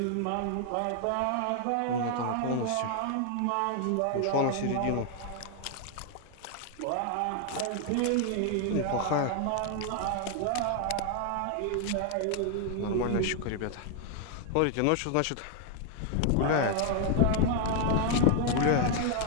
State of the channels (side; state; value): both; different; correlation 0.00